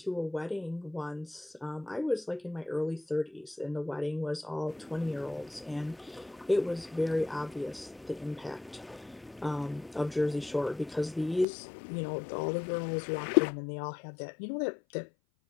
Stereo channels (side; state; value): right; drops out; at 11.5 s